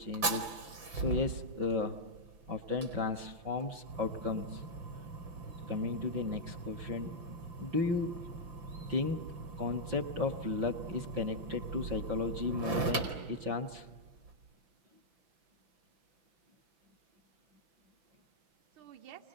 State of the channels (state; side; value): late; left; 5.8 ms